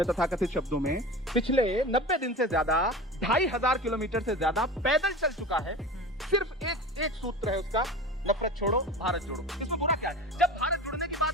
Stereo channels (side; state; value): both; normal; correlation 0.32